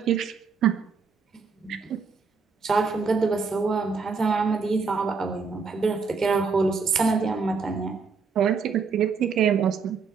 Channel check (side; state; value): left; quieter; 5.2 dB